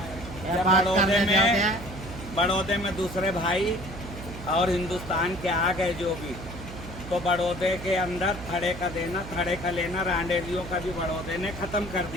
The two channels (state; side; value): noise; right; hum, 11 dB below the sound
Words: बड़ौदे में दूसरे भाई और हिंदुस्तान के आ गए जो भी, तो बड़ौदे के अंदर थड़े का देना, थड़े का लेना, रांडेलियों का भी बड़ौदे ने ख़त्म कर